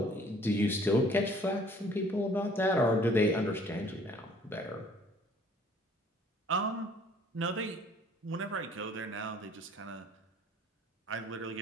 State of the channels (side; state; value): both; normal; correlation 0.56